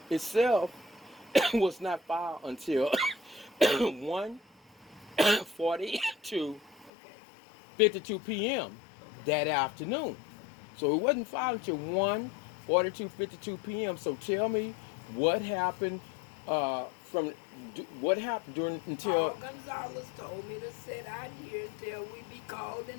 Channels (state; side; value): drops out; right; at 6.9 s